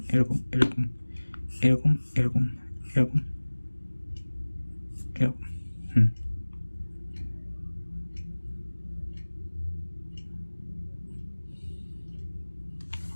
এরকম এরকম এরকম এরকম এরকম এরকম।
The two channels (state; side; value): inverted; both; correlation -1.00